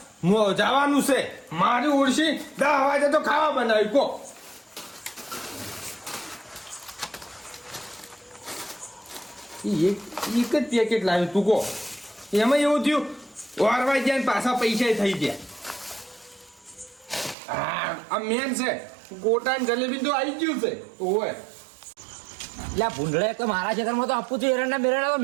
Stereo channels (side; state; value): left; drops out; at 17.4 s